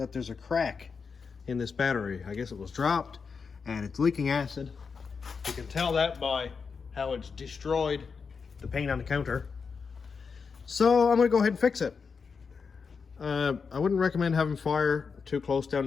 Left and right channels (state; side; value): quieter; right; 5.5 dB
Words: there's a crack in this battery. I guess it was dropped and it's leaking acid. You can tell that by how it's destroyed the paint on the counter. So I'm gonna go ahead and fix it. I wouldn't recommend having fire too close down